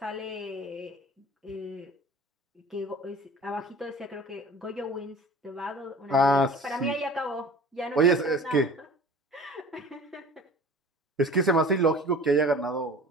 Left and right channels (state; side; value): normal; both; correlation 0.42